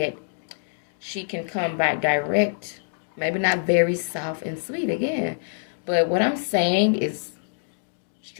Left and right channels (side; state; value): right; silent; digital silence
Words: she can come back direct. Maybe not very soft and sweet again. But what I'm saying is